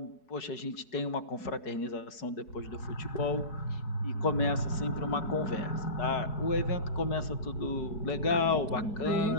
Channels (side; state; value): right; late; 4.7 ms